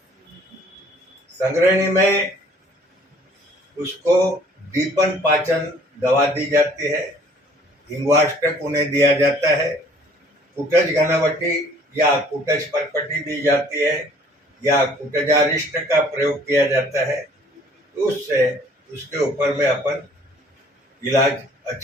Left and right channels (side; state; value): both; normal; correlation 0.56